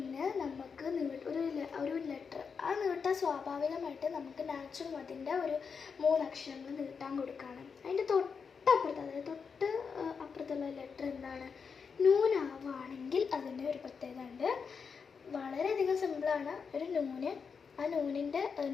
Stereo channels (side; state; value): right; quieter; 5.8 dB